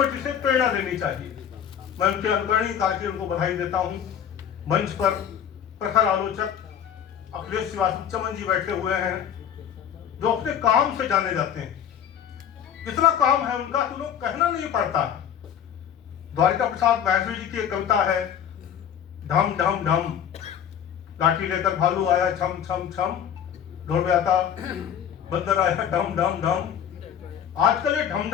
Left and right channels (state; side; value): quieter; right; 9.0 dB